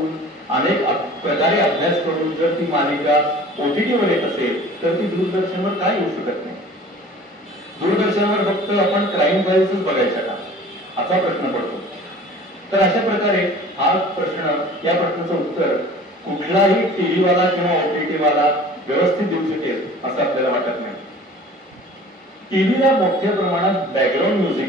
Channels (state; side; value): normal; both; correlation 0.45